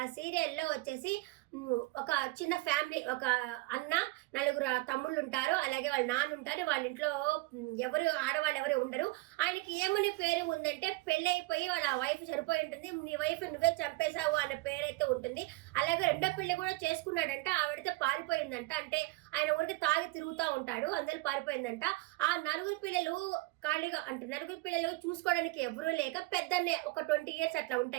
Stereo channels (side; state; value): left; quieter; 21.9 dB